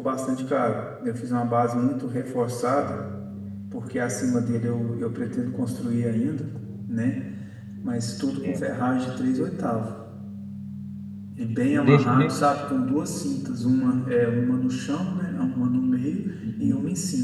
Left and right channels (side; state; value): both; identical; correlation 1.00